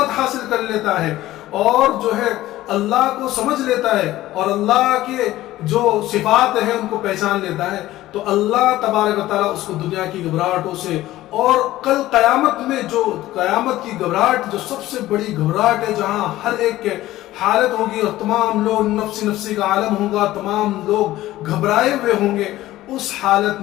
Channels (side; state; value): right; quieter; 15.7 dB